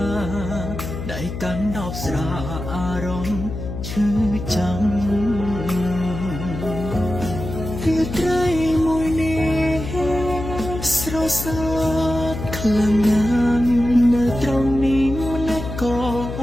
ដៃកាន់ដបស្រាអារម្មណ៍ឈឺចាំរាត្រីមួយនេះស្រសើតខ្លាំងណាស់នៅត្រង់នេះម្លេះក៏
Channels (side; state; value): left; noise; hum, 7 dB below the sound